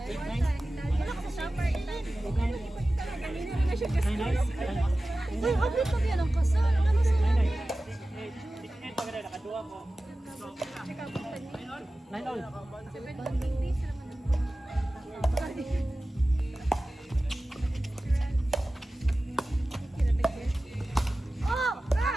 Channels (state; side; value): normal; both; correlation 0.96